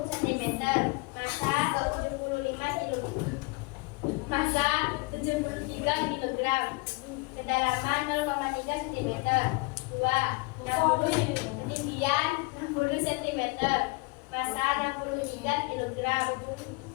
cm, massa 75 kg, massa 73 kg, kedalaman 0,3 cm. 2. 60, ketinggian 60 cm, massa 63 kg.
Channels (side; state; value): right; quieter; 27.2 dB